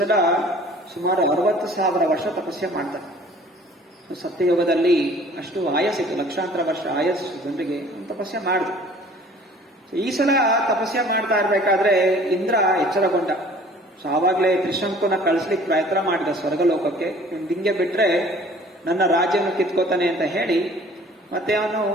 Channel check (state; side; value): normal; both; correlation 0.50